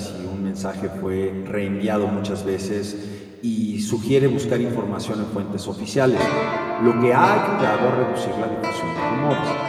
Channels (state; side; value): identical; both; correlation 1.00